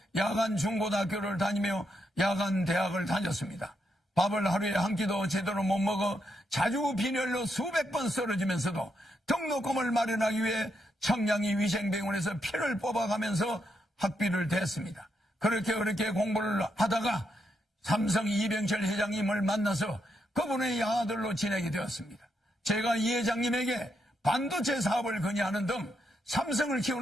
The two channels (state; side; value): normal; both; correlation 0.81